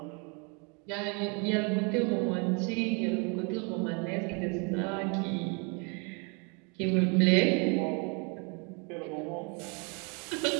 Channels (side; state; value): left; quieter; 34.0 dB